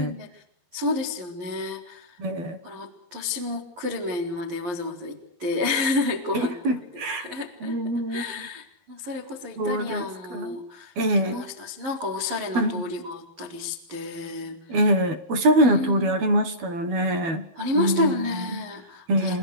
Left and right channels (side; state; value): left; late; 11 ms